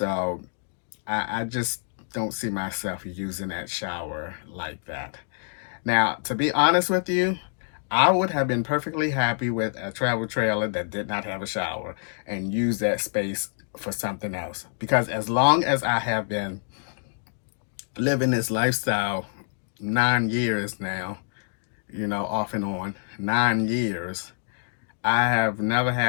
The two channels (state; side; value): silent; right; digital silence